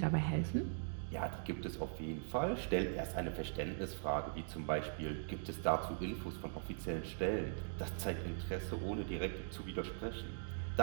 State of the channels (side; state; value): left; silent; digital silence